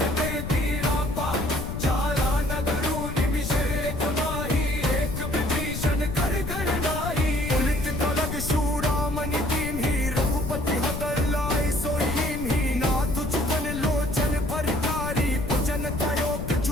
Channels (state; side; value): noise; left; rumble, 6 dB below the sound